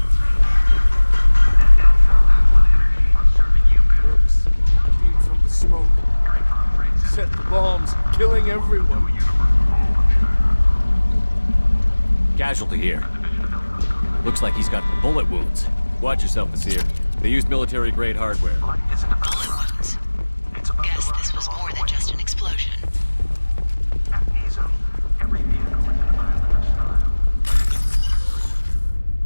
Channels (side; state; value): both; inverted; correlation -1.00